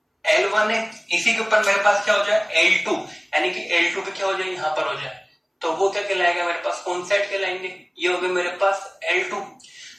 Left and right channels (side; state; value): both; identical; correlation 1.00